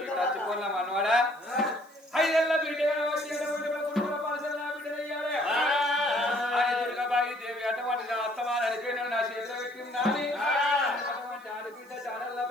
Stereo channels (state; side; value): noise; right; hiss, 28 dB below the sound